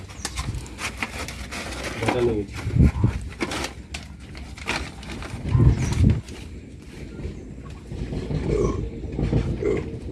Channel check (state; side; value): identical; both; correlation 1.00